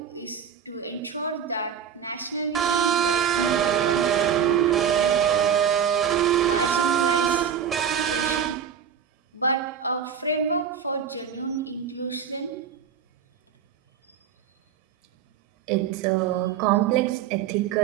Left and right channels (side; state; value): left; quieter; 8.0 dB